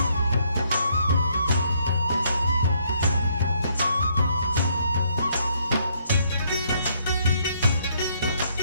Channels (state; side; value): inverted; both; correlation -0.69